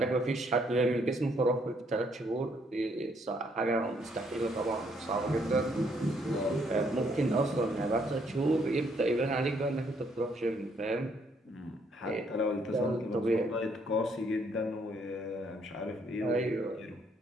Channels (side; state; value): both; normal; correlation 0.69